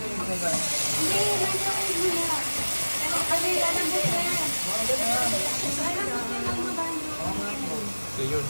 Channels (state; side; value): inverted; both; correlation -1.00